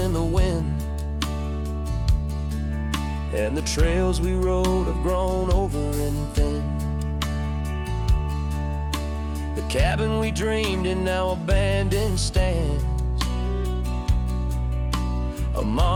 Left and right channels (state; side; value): identical; both; correlation 1.00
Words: the wind, and the trails we rode have grown over and thin. The cabin we dreamed in now abandoned stands, a